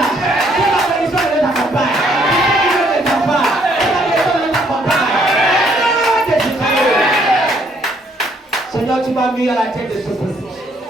que la bénédiction les accompagne. Seigneur, tu m'as mis à la tête de ce peuple.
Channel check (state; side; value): normal; both; correlation 0.67